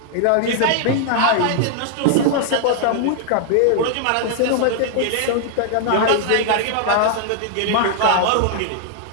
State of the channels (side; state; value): both; different; correlation 0.00